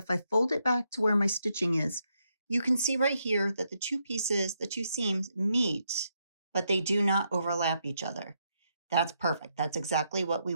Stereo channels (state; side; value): inverted; both; correlation -0.79